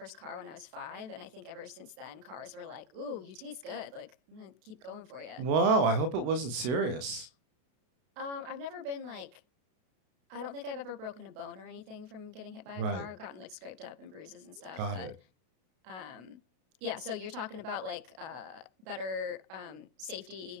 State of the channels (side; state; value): left; late; 32 ms